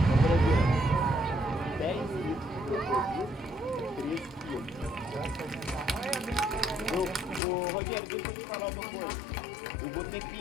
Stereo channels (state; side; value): drops out; right; at 7.4 s